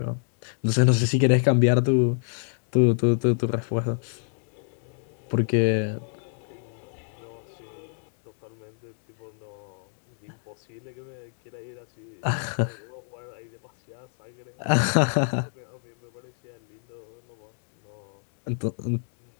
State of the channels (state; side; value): silent; right; 60 dB below the other